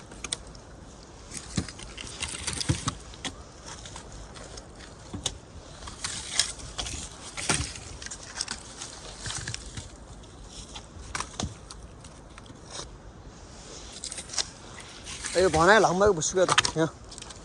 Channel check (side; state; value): both; identical; correlation 1.00